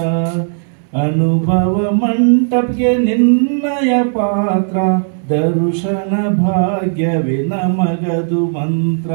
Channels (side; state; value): left; silent; 69 dB below the other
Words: ಅನುಭವ ಮಂಟಪಕ್ಕೆ ನಿನ್ನಯ ಪಾತ್ರ, ದರ್ಶನ ಭಾಗ್ಯವೇ ನಮಗದು ಮಂತ್ರ.